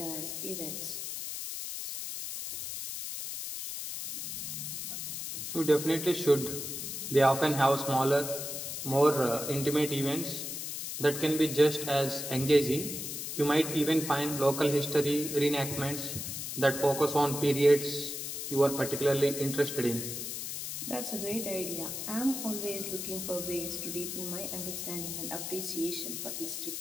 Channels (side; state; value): left; noise; hiss, 5 dB below the sound